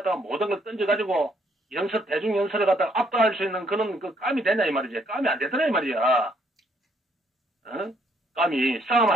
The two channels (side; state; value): both; normal; correlation 0.69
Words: 모든 걸 던져가지고, 대중 연설을 갖다가 압도할 수 있는 그런 깜이 되냐 이 말이지. 깜이 안 되더라 이 말이야. 깜이